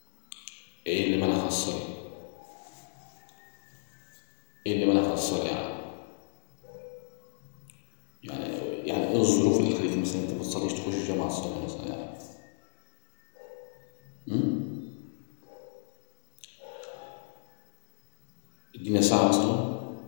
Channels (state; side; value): silent; right; 57 dB below the other